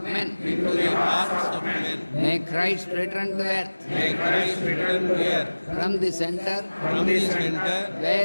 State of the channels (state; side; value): inverted; both; correlation -1.00